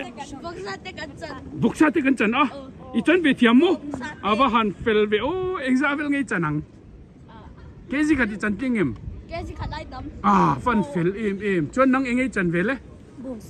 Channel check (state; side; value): identical; both; correlation 1.00